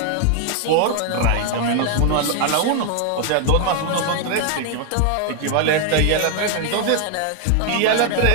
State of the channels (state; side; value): different; both; correlation 0.00